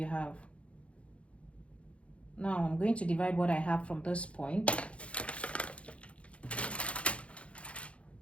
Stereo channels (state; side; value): late; right; 0.062 ms